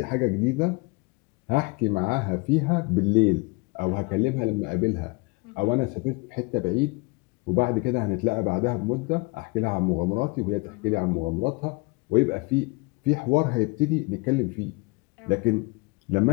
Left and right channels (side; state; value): right; quieter; 27.2 dB